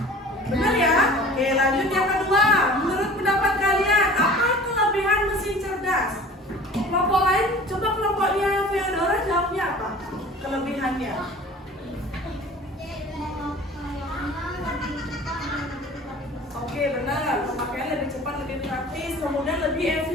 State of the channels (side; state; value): both; normal; correlation 0.44